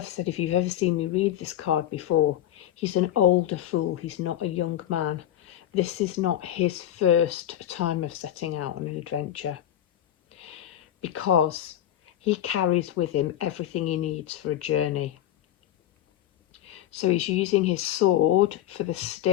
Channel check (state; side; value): quieter; right; 11.9 dB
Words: said, if you've ever seen me read this card before, he's an older fool. He's not a young man. This is not his first time of setting out on an adventure, because he carries with him everything he needs for a journey. So he's using his sword for the